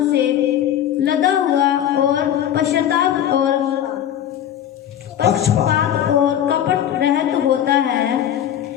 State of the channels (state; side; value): quieter; right; 10.5 dB